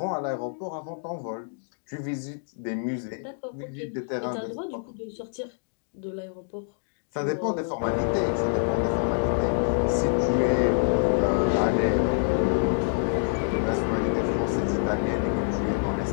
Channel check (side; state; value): right; silent; digital silence